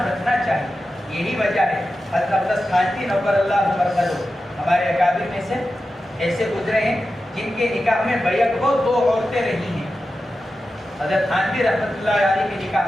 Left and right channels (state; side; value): normal; both; correlation 0.92